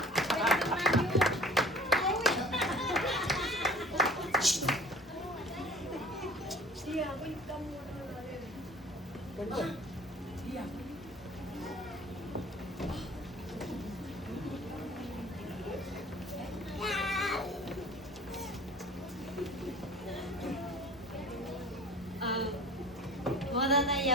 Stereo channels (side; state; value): both; normal; correlation 0.46